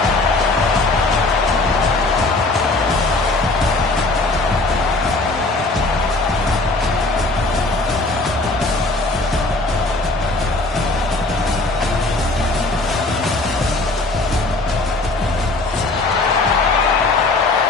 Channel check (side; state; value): right; quieter; 3.1 dB